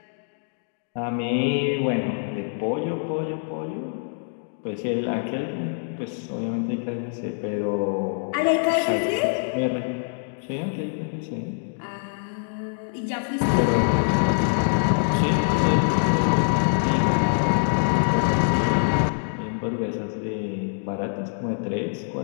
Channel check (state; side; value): silent; right; digital silence